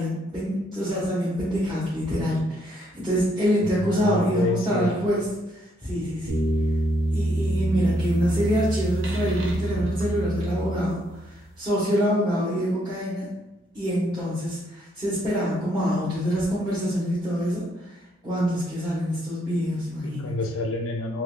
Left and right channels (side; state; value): both; normal; correlation 0.72